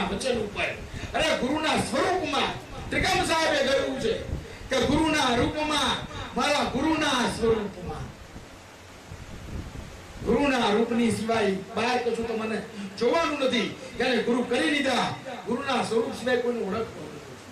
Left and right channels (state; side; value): identical; both; correlation 1.00